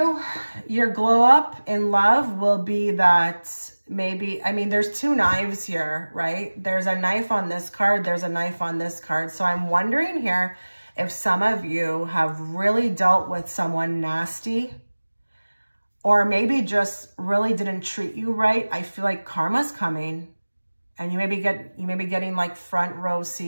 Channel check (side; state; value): both; inverted; correlation -1.00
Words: your glow up in love will be that maybe, I mean, there's two knives here, right? There's a knife on this card. There's a knife on this card. So I'm wondering here if some of you have really dealt with someone nasty or maybe just really didn't treat you right. I feel like karma's coming and you may be getting like front row